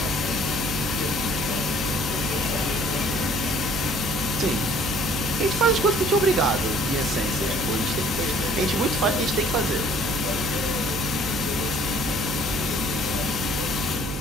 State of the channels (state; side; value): noise; right; hum, 6 dB below the sound